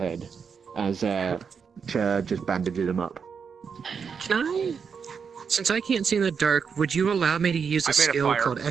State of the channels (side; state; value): left; quieter; 6.2 dB